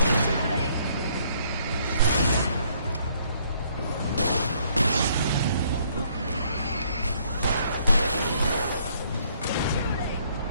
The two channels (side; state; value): both; inverted; correlation -0.65